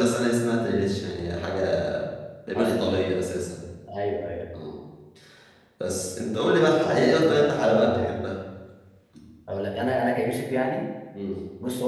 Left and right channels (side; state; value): both; identical; correlation 1.00